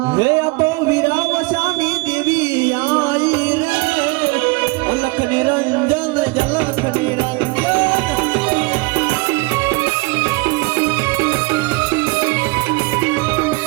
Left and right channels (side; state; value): left; quieter; 26.3 dB